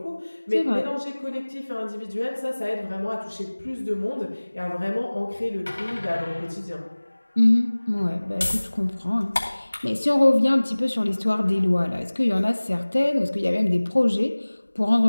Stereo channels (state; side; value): inverted; both; correlation -1.00